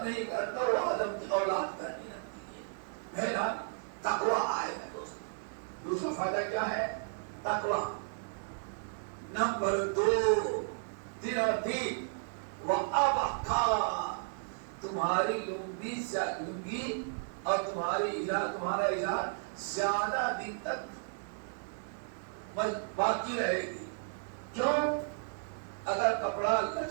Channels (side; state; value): left; silent; 55 dB below the other